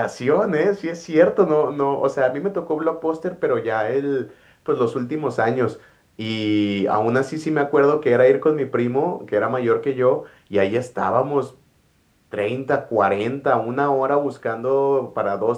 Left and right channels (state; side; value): identical; both; correlation 1.00